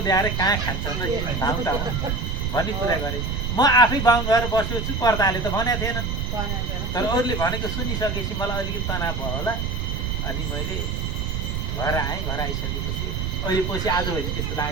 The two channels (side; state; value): right; noise; rumble, 2 dB below the sound